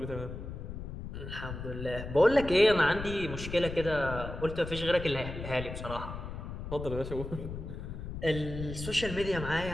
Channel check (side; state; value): left; noise; rumble, 8 dB below the sound